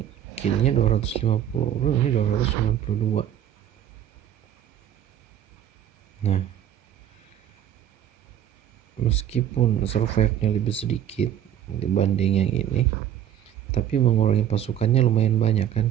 killnya 250, ini 292. Nah, meskipun survive-nya lebih sedikit dibanding yang ini, tapi mengurangi pasukannya lumayan banyak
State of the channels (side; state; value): left; quieter; 10.4 dB